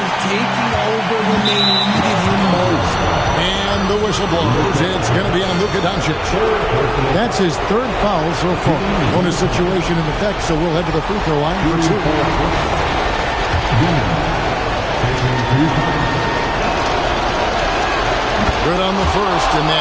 taking over when they needed him most. And the whistle blows. It's going to be on Luka Doncic. That's his third foul so far. Bonus situation in effect, so we'll head to the free throw line for two. Good on the first, and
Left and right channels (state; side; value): identical; both; correlation 1.00